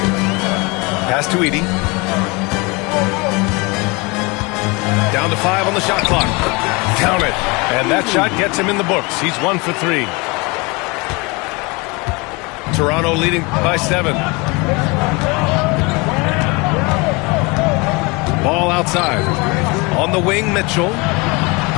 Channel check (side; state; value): right; quieter; 27.0 dB